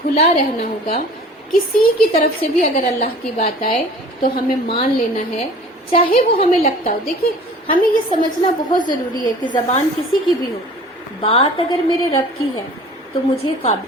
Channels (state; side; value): normal; both; correlation 0.45